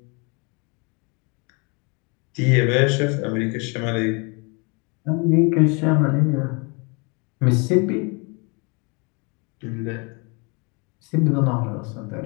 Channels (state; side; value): quieter; right; 31.6 dB